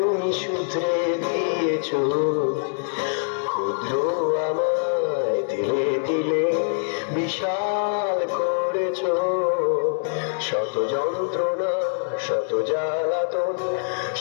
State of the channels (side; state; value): right; silent; digital silence